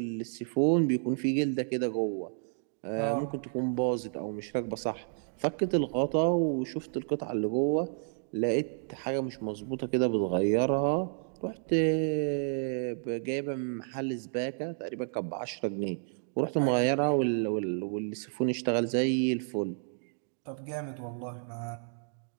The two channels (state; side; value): silent; left; digital silence